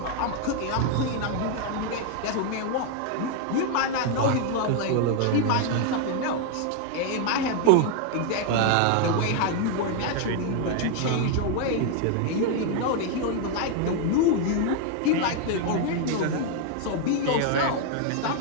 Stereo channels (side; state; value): both; different; correlation 0.01